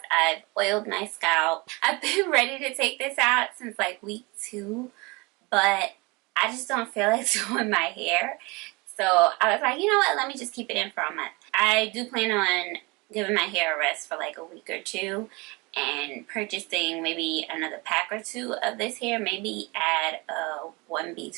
I've oiled my scalp. I've been ready to take this out since like week 2, but I just don't feel like doing my hair, so I was like, you know what, let me just keep it in for a month. I do plan on giving my hair a rest for like a week or 2 and purchasing maybe another pack or 2 of this hair, maybe add a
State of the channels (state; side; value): quieter; left; 26.4 dB